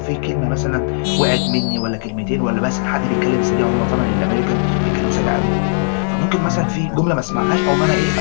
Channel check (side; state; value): right; silent; 62 dB below the other